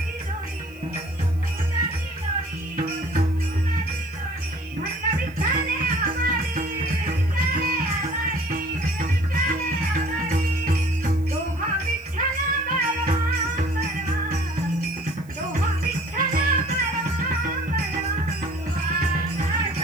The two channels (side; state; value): right; noise; hiss, 28 dB below the sound